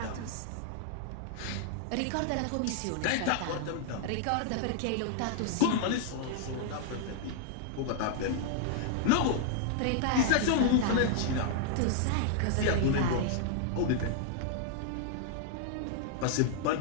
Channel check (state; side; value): different; both; correlation -0.01